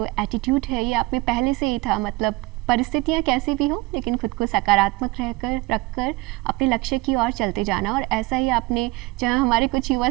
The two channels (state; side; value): quieter; left; 22.1 dB